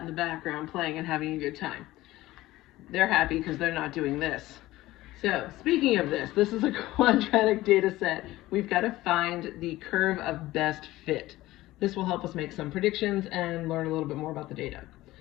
the background playing and having a good time. They're happy because they're not doing this. So, speaking of this is a quadratic data set. We've got to find the curve of best fit. This will help us make some predictions and learn a little bit more about the data.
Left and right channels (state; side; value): quieter; right; 17.1 dB